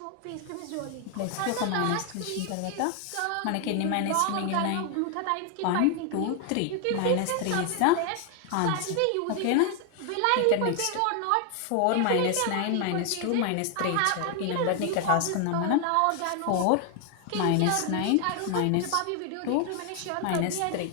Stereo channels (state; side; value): different; both; correlation 0.00